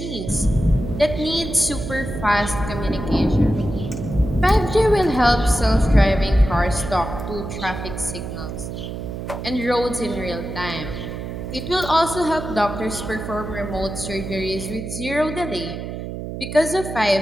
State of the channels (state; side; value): noise; right; hum, 7 dB below the sound